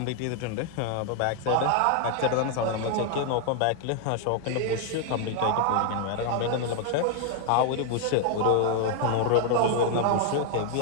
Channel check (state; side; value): different; both; correlation 0.00